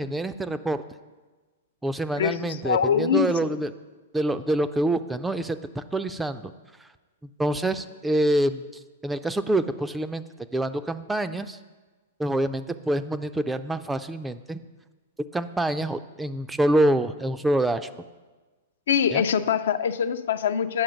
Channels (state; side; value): normal; both; correlation 0.46